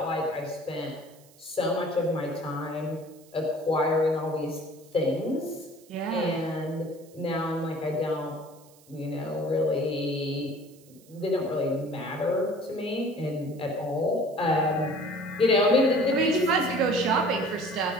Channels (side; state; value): right; noise; hiss, 27 dB below the sound